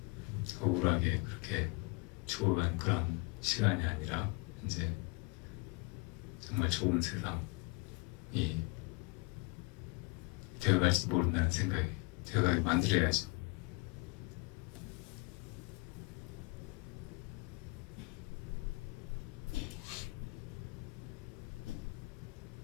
억울하게 그렇게 죽어간 그런 시간이 아니라 이제 정말 좋은 세상이 되어갈지도 모른다는 생각이 되어가게 만들어야죠.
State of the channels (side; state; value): right; quieter; 26.3 dB